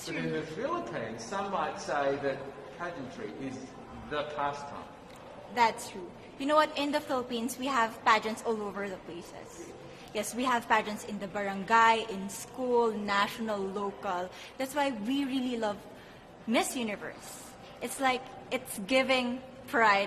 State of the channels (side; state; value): both; identical; correlation 1.00